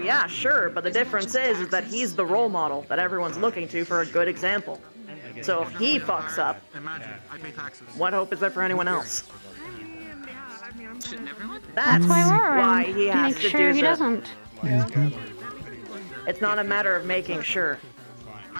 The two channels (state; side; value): inverted; both; correlation -1.00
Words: sure, but the difference is that he's the role model that everyone's looking to for a good example. So if he fucks up, what hope is there for anyone else? That's why we're why around. he has Make to sure do he the... doesn't. It's not a matter of making sure.